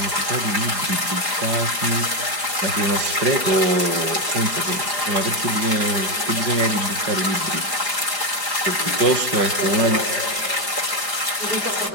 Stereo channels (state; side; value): late; left; 5.0 ms